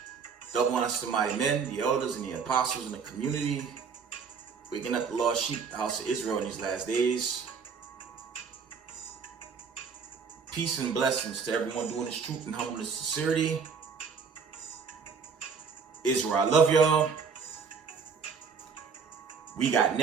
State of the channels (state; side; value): quieter; left; 5.8 dB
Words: Double honors to the mighty men, the elders, and the apostles in the community, waking up the lost sheep, the house of Israel in these last days. Peace and blessings to everyone doing this truth and humbleness and sincerity. Israel, I love y'all. We got